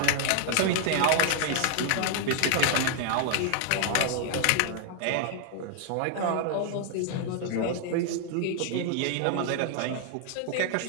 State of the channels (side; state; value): both; different; correlation 0.00